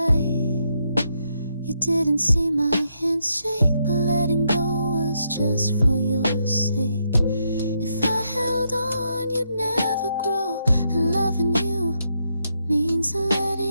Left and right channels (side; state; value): both; inverted; correlation -0.79